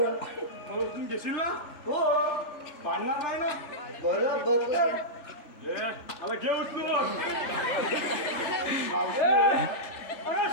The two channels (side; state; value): right; late; 3.4 ms